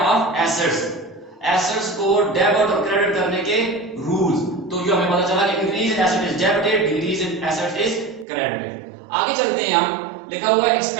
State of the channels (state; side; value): drops out; left; at 8.2 s